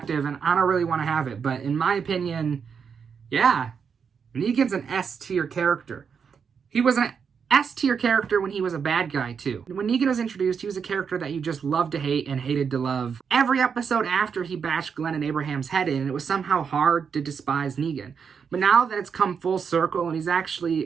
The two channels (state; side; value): quieter; left; 6.5 dB